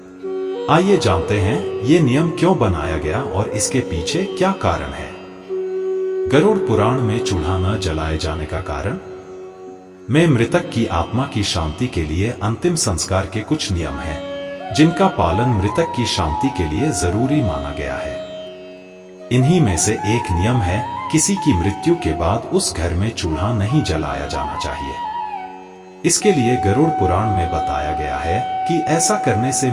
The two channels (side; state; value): both; identical; correlation 1.00